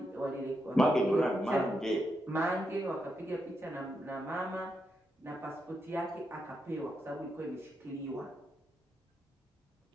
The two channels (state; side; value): normal; both; correlation 0.83